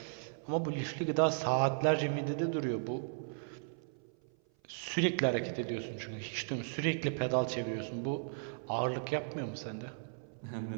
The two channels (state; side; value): silent; left; 54 dB below the other